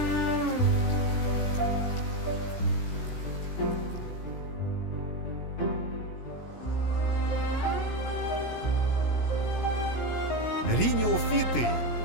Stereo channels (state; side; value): late; right; 17 ms